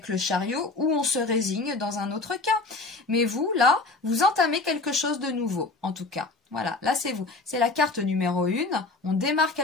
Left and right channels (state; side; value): quieter; right; 3.4 dB